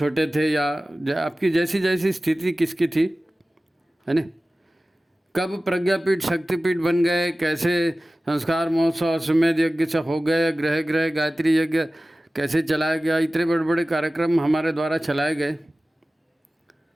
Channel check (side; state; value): both; normal; correlation 0.96